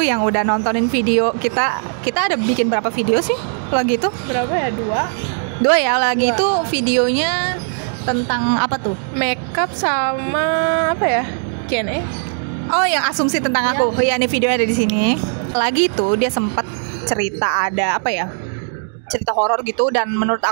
yang udah nontonin video kita. Kita ada bikin berapa video sih lagi itu? Berapa ya? Dua ya lagi itu videonya tentang apa tuh? Makeup sama apa ya? Q&A. Oh, yang asumsi tentang aku. Iya, nih videonya ada di sini. Lagi tuh dia sempat cerita ada apa ya? Cerita horor gitu dan menurut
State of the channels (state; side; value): silent; left; 67 dB below the other